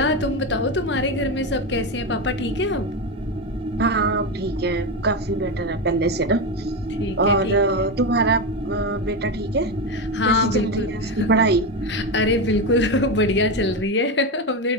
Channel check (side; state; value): both; normal; correlation 0.14